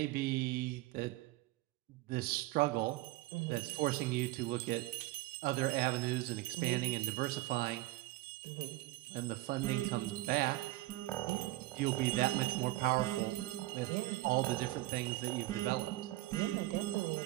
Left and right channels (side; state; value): left; quieter; 18.7 dB